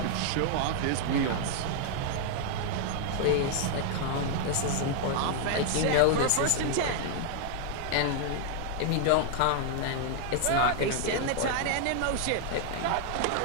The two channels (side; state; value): both; different; correlation 0.00